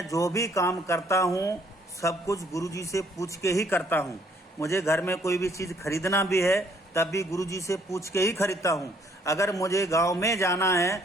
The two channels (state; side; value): normal; both; correlation 0.64